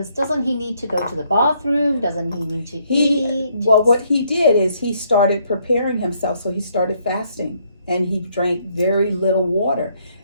doesn't he need to go to the bathroom? Doesn't he need to eat? Well, what he did is he started preparing himself. So he started fasting and he drank very little water.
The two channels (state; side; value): inverted; both; correlation -0.70